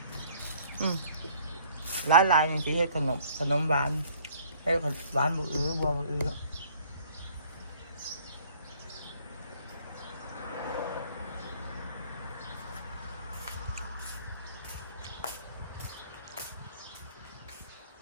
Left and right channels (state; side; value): inverted; both; correlation -0.56